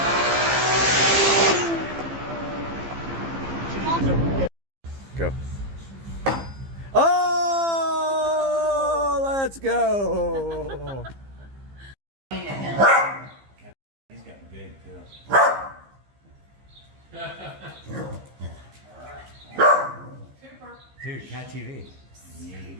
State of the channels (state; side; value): late; left; 15 ms